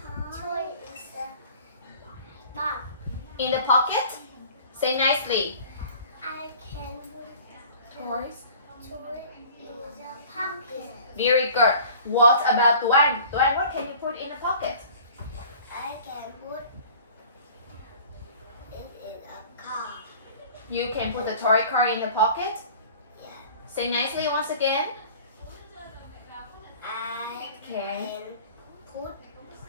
In the pocket? Say nicely. I can put Toys. toy in the pocket. Very good. What about Tuan? Tuan, what can you put in the pocket? I can put it in a car. You can put the toy car in the pocket. Yeah. Say nicely once again. I Okay. can put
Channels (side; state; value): both; inverted; correlation -0.46